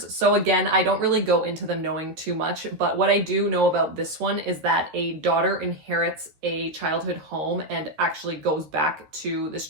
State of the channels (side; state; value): left; late; 13 ms